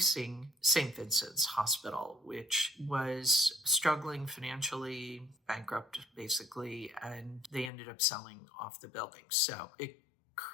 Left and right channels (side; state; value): right; drops out; at 7.7 s